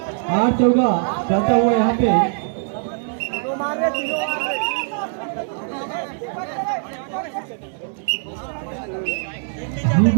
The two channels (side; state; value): left; silent; 65 dB below the other